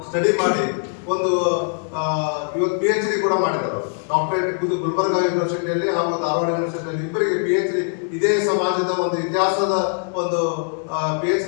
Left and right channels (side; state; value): right; silent; 59 dB below the other